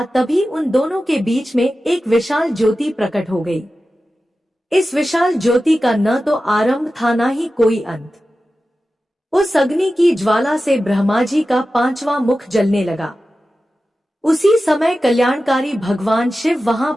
तभी उन दोनों के बीच में एक विशाल ज्योति प्रकट हो गई। इस विशाल ज्योति का न तो आरंभ था न ही कोई अंत। उस अग्नि की ज्वाला से ब्रह्मा जी का 5वां मुख जलने लगा। उसी समय कल्याणकारी भगवान शिव वहां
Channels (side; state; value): both; normal; correlation 0.94